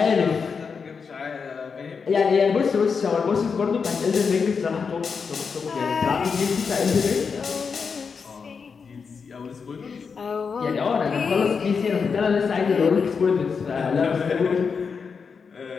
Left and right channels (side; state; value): right; quieter; 5.6 dB